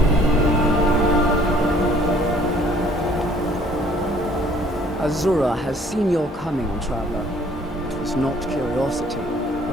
Azura has seen your coming, traveler. It was not curiosity,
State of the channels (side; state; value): both; normal; correlation 0.58